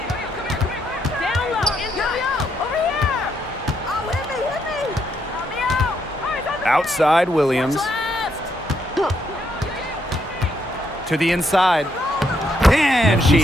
low. Over here. Oh, hit me. Help me out. All right, Outside Williams. left. To the inside. And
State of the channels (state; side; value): normal; both; correlation 0.76